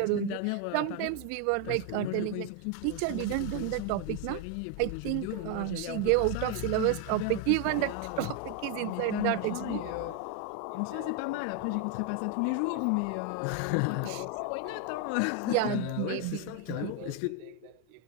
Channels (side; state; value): both; different; correlation 0.01